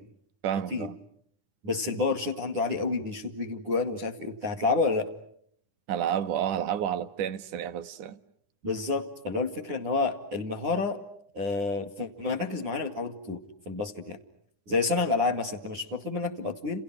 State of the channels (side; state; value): left; late; 9.9 ms